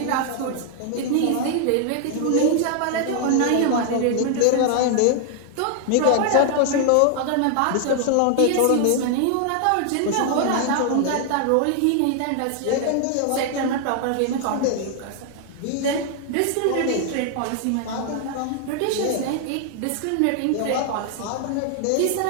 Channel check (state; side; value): different; both; correlation 0.00